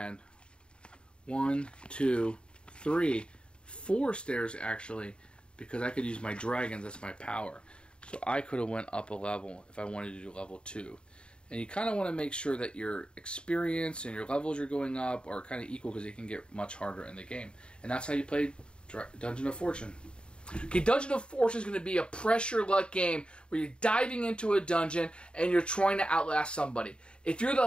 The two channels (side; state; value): right; late; 0.053 ms